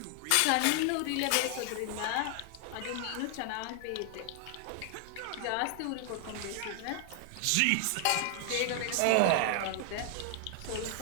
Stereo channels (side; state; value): both; different; correlation 0.00